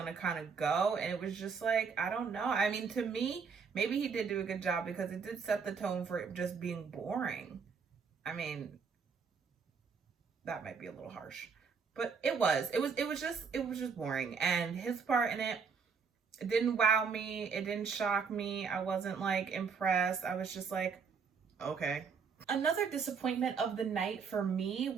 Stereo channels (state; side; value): quieter; left; 5.8 dB